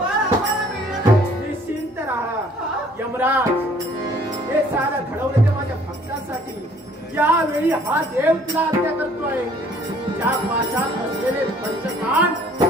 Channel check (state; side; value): normal; both; correlation 0.58